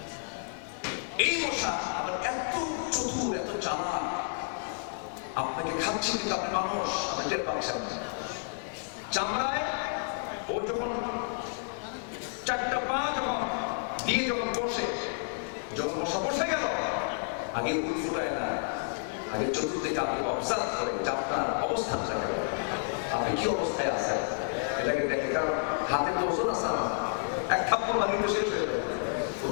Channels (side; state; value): right; silent; digital silence